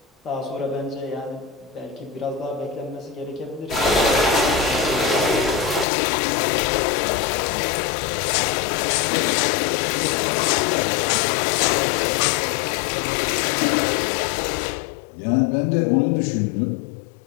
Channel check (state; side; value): drops out; right; at 5.9 s